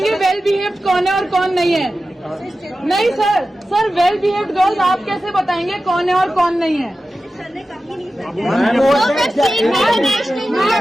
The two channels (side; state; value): both; normal; correlation 0.94